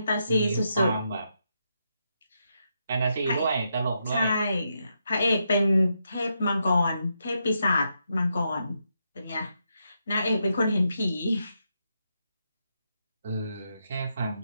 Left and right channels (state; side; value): inverted; both; correlation -0.82